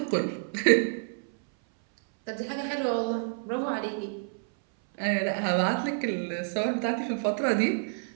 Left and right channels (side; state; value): left; silent; 59 dB below the other